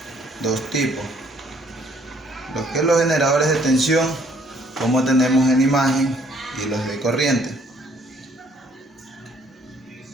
dos tipos. Lo que es los generadores de tensión, como tenemos en imagen, y los de corriente.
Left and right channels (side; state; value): both; normal; correlation 0.63